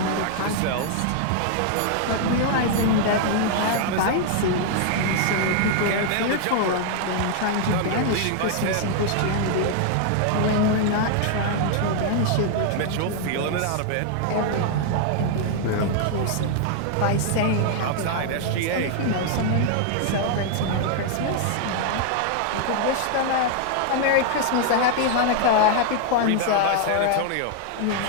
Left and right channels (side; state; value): both; different; correlation 0.00